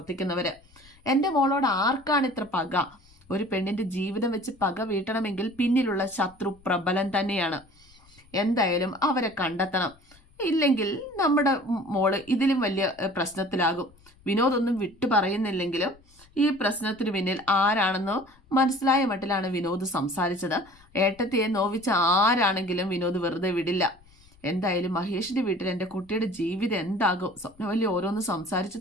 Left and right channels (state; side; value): noise; left; rumble, 28 dB below the sound